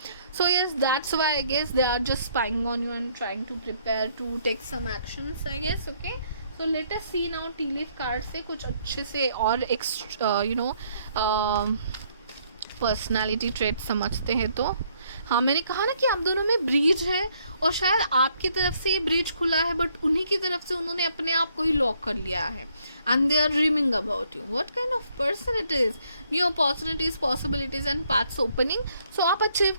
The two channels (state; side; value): inverted; both; correlation -0.68